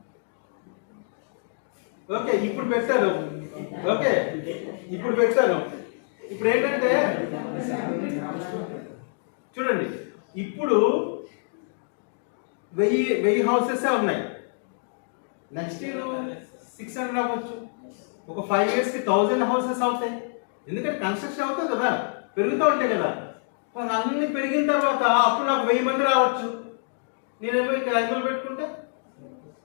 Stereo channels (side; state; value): right; silent; digital silence